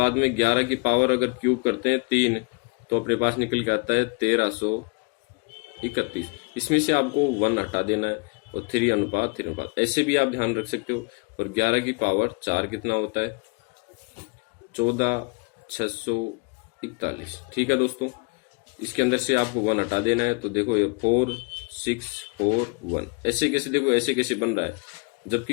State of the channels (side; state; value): right; quieter; 31.8 dB